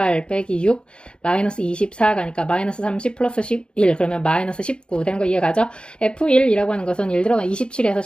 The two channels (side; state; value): right; late; 0.053 ms